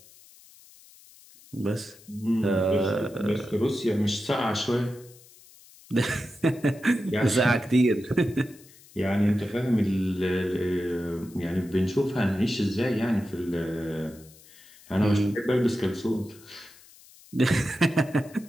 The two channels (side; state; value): left; noise; hiss, 24 dB below the sound